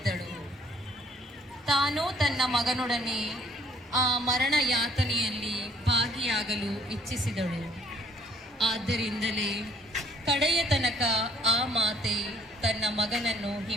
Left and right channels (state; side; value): normal; both; correlation 0.60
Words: ತಾನು ತನ್ನ ಮಗನೊಡನೆ ಆ ಮರಣ ಯಾತನೆಯಲ್ಲಿ ಭಾಗಿಯಾಗಲು ಇಚ್ಛಿಸಿದಳು. ಆದ್ದರಿಂದಲೇ ಕಡೆಯ ತನಕ ಆ ಮಾತೆ ತನ್ನ ಮಗನನ್ನು